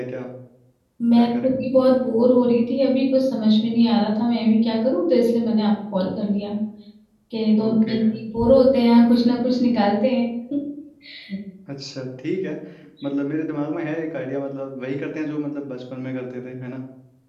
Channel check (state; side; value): identical; both; correlation 1.00